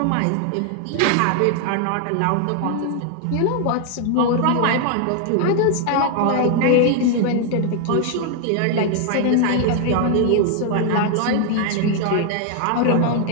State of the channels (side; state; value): both; different; correlation 0.00